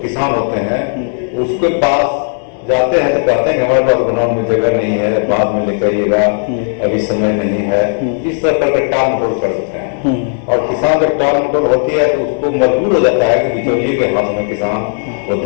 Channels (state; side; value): silent; right; digital silence